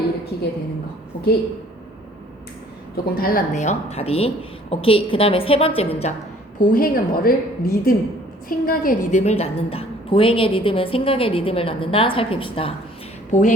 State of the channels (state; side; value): normal; both; correlation 0.56